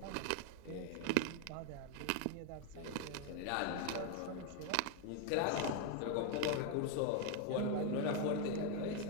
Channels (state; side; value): different; both; correlation 0.01